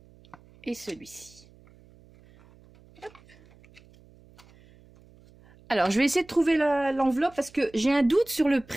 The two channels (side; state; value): right; noise; hum, 27 dB below the sound